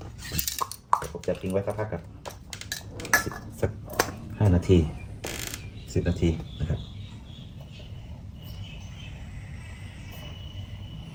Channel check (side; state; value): both; identical; correlation 1.00